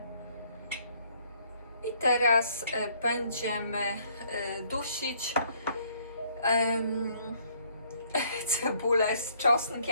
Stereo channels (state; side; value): inverted; both; correlation -0.64